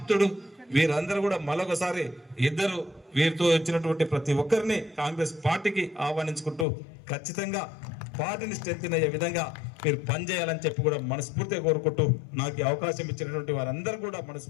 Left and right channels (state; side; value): drops out; right; at 6.7 s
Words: వీరందరూ కూడా మరొకసారి ఇద్దరు వీరితో వచ్చినటువంటి ప్రతి ఒక్కరిని కాంగ్రెస్ పార్టీకి ఆహ్వానించుకుంటూ ఖచ్చితంగా పార్టీని స్ట్రెంథెన్ అయ్యే విధంగా మీరు పనిచేయాలని చెప్పి కూడా మనస్ఫూర్తిగా కోరుకుంటూ నాకు అవకాశం ఇచ్చినటువంటి వారందరూ కూడా